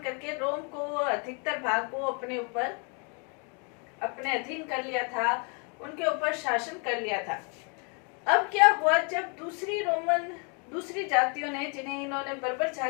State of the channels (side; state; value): right; quieter; 36.3 dB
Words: करके रोम को, अधिकतर भाग को अपने ऊपर, अपने अधीन कर लिया था, उनके ऊपर शासन कर लिया था। अब क्या हुआ, जब दूसरी जातियों ने, जिन्हें इन्होंने बर्बर